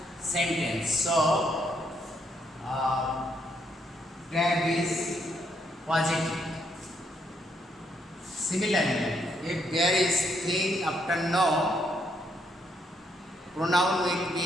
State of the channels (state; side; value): normal; both; correlation 0.74